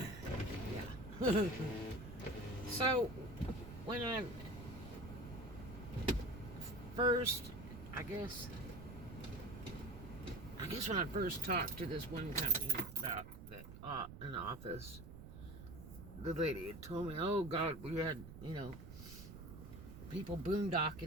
Yeah. So when I first, I guess when I first talked to this one company about that an office, the lady had told me, "Oh God, we had people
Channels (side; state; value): right; noise; rumble, 12 dB below the sound